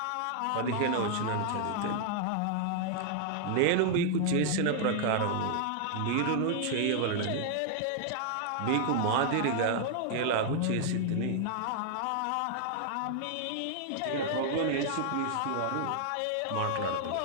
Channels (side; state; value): both; different; correlation 0.00